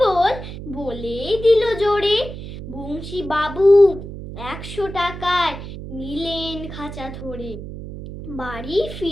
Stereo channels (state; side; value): noise; right; hum, 10 dB below the sound